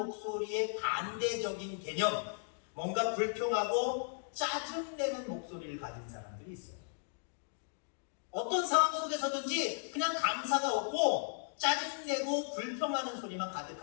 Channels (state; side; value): silent; right; digital silence